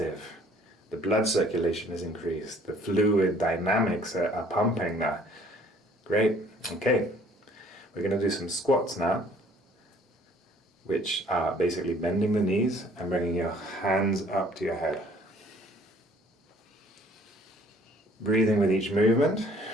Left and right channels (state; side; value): normal; both; correlation 0.57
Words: The blood circulation is increased. The fluid dynamics are pumping now. Great. Okay. We're going to do some squats now, which are basically bending the knees and bringing your hands up to your head. Breathing with each movement.